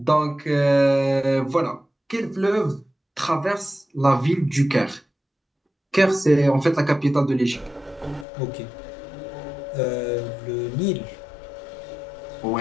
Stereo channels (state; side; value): drops out; right; at 8.2 s